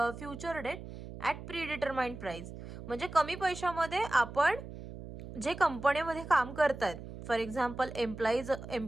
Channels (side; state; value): right; noise; hum, 12 dB below the sound